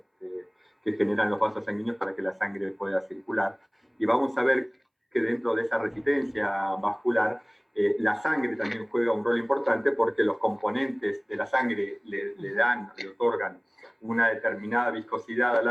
los vasos sanguíneos para que la sangre pueda circular. Y vamos a ver que dentro de esa resistencia vascular, la sangre también juega un rol importante porque los componentes de la sangre le otorgan una determinada viscosidad a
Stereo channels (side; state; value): both; identical; correlation 1.00